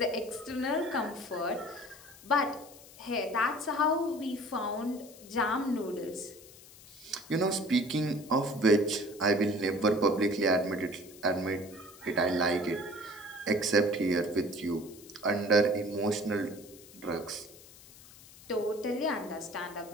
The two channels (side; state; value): left; noise; hiss, 20 dB below the sound